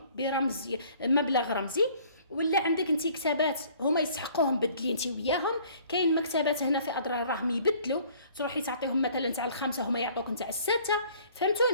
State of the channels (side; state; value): both; inverted; correlation -0.55